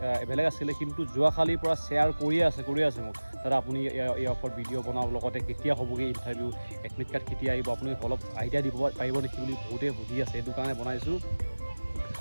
বেলেগ আছিলে, কিন্তু যোৱাকালিৰ পৰা শ্বেয়াৰ কৰিয়ে আছে মোক, দাদা আপুনি ইয়াৰ ওপৰত ভিডিঅ' বনাওক, লগতে কেতিয়া হ'বগৈ ইণ্টাৰভিউ, এডমিট কাৰ্ড কেতিয়া আহিব, আপুনি অলপ আইডিয়া দিব পাৰিব নেকি বুলি বহুতে সুধি আছে। সেইটো কাৰণে বনাইছোঁ।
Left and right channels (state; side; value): inverted; both; correlation -1.00